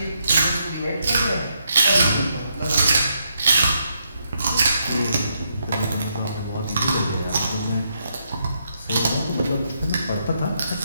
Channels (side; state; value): both; inverted; correlation -0.78